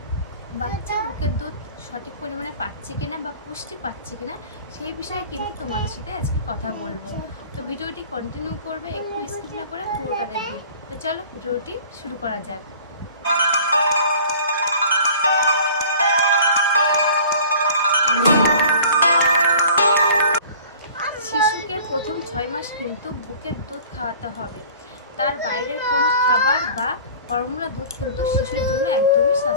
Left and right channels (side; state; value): both; inverted; correlation -0.45